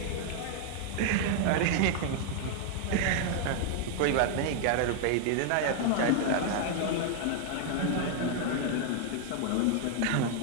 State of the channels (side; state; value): both; different; correlation 0.00